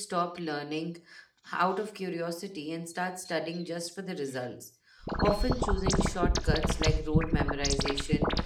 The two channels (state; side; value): identical; both; correlation 1.00